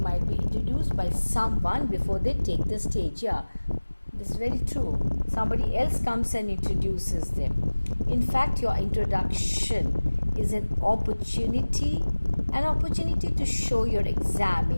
be introduced by someone before they take the stage. Yeah, this is very true. Somebody else comes and introduces them. In fact, your introduction is an opportunity to show your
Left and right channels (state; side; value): inverted; both; correlation -1.00